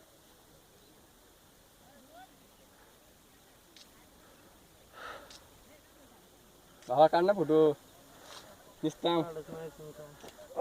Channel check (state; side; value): identical; both; correlation 1.00